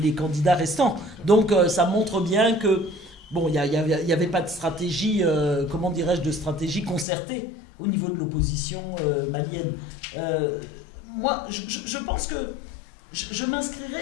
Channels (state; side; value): drops out; right; at 7.1 s